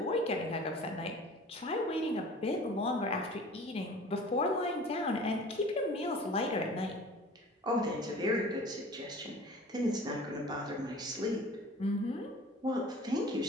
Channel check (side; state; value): both; normal; correlation 0.43